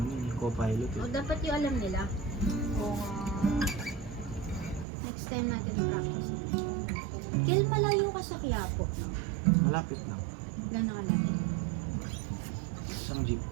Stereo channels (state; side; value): drops out; left; at 4.9 s